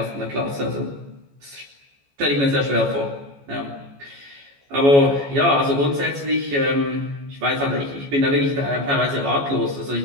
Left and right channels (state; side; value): late; left; 14 ms